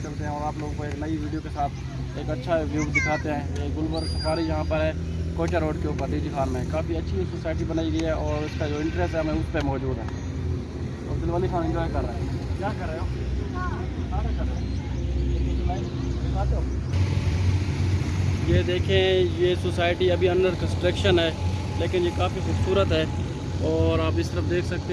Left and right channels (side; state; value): both; identical; correlation 1.00